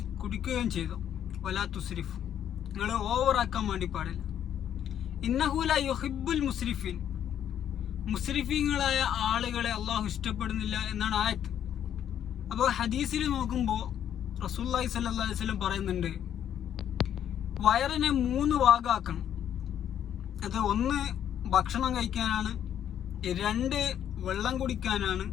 കുടിക്കുകയും ചെയ്തു, വലാ തുസ്രിഫു, നിങ്ങൾ ഓവറാക്കാൻ വേണ്ടി പാടില്ല. ഇന്നഹു ലാ യുഹിബ്ബുൽ മുസ്രിഫീൻ, മുസ്രിഫീങ്ങളായ ആളുകളെ അള്ളാഹു ഇഷ്ടപ്പെടുന്നില്ല എന്നാണ് ആയത്ത്. അപ്പോൾ ഹദീസിൽ നോക്കുമ്പോൾ റസൂലുള്ളാഹി സ്വല്ലല്ലാഹു അലൈഹി വസല്ലം പറയുന്നുണ്ട്, വയറിനെ 3 ഭാഗമാക്കണം. അത് 1 ഭക്ഷണം കഴിക്കാനാണ്, 2 വെള്ളം കുടിക്കാനാണ്,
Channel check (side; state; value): right; quieter; 9.9 dB